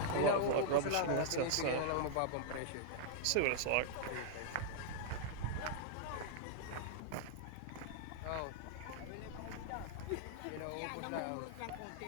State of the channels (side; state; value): both; different; correlation -0.01